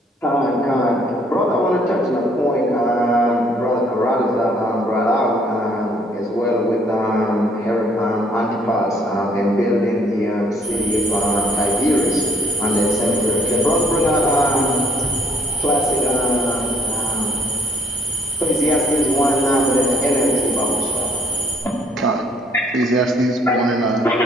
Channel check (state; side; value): normal; both; correlation 0.63